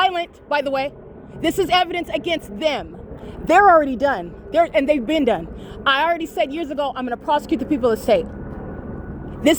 by the way. This is evidence against them. They're already done. And they've been done. I already said years ago, I'm going to prosecute the people of the state.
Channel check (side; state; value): both; identical; correlation 1.00